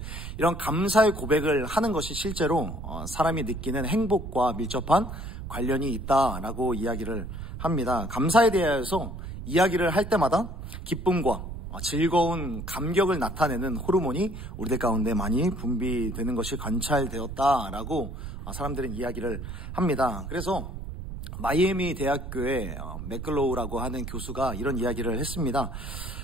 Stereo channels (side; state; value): right; noise; rumble, 9 dB below the sound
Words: 이런 감사의 고백을 하는 것이 실제로 사람이 느끼는 행복과 밀접한 관련이 있다라고 이야기를 합니다. 감사에 대해서 이야기를 할 때마다 기쁨과 즐거운 감격을 나타내는 호르몬이 우리들 가운데 많이 분비되는 것이 관찰되었다라고 사람들은 이야기를 합니다. 그래서 마이애미 대학교의 맥글로우라고 하는 교수가 이런 이야기를 했습니다.